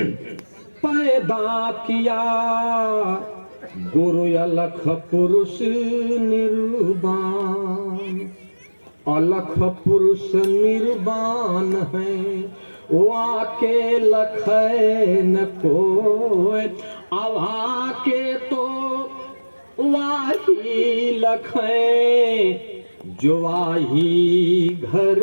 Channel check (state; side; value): inverted; both; correlation -1.00